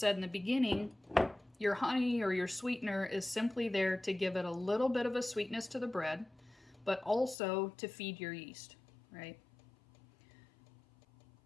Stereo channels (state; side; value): drops out; right; at 7.4 s